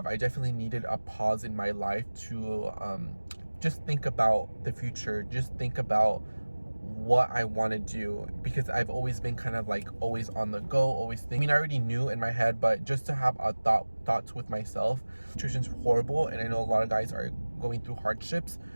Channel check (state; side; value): inverted; both; correlation -1.00